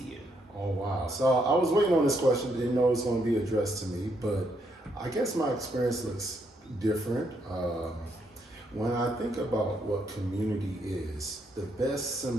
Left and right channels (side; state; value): both; normal; correlation 0.75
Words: you. Oh wow! So I was waiting on this question. Didn't know it was going to be addressed to me, but I guess my experience looks different. When I think about what community is, the best